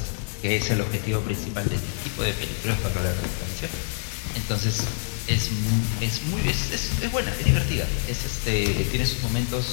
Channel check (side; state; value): right; silent; 61 dB below the other